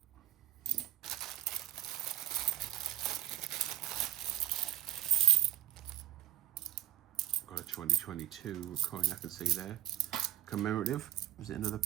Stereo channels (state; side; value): quieter; left; 12.7 dB